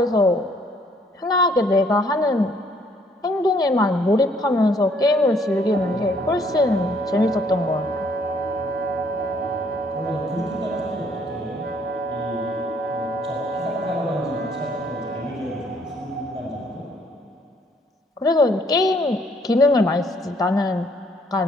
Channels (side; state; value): both; normal; correlation 0.64